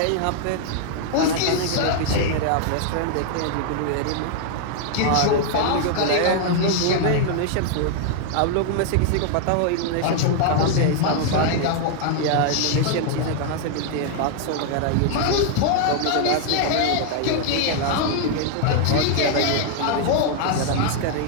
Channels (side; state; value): both; different; correlation 0.00